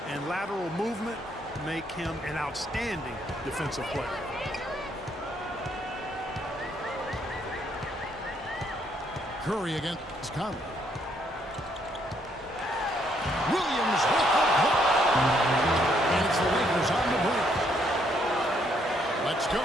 and lateral movement make him an outstanding defensive player. Curry against Conley. Williams with the block. And it's the Lakers on the break. Let's go.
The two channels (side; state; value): both; normal; correlation 0.71